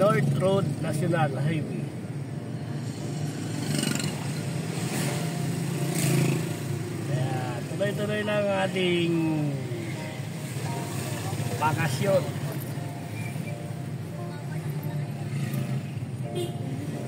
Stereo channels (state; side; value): identical; both; correlation 1.00